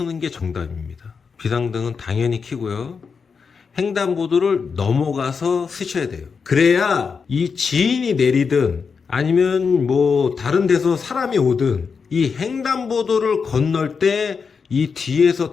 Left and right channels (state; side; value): quieter; right; 5.6 dB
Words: 게 정답입니다. 비상등은 당연히 켜고요. 횡단보도를 넘어가서 쓰셔야 돼요. 그래야 이 지인이 내리든 아니면 뭐 다른 데서 사람이 오든 이 횡단보도를 건널 때 이 뒤에서